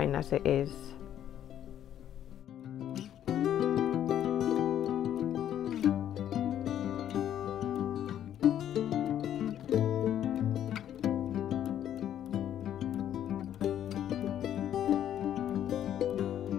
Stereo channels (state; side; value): quieter; right; 10.7 dB